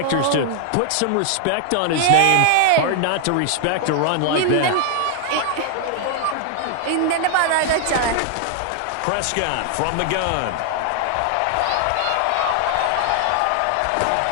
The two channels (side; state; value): both; different; correlation 0.00